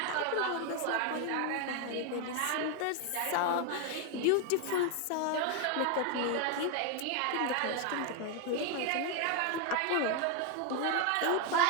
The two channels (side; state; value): both; different; correlation 0.01